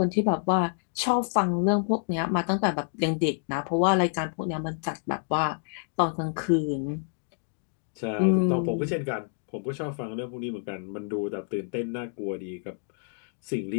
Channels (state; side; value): silent; right; digital silence